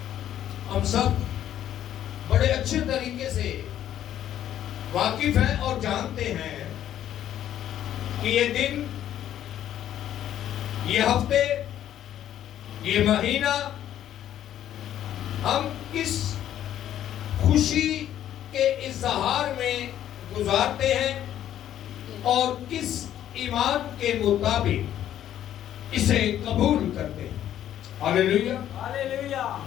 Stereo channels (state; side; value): quieter; right; 11.3 dB